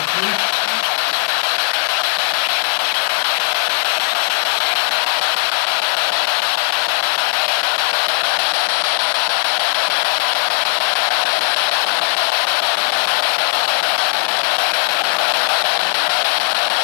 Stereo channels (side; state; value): right; silent; digital silence